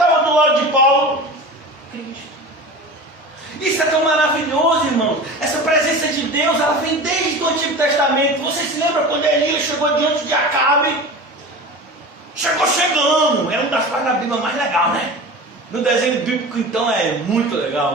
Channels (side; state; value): both; normal; correlation 0.33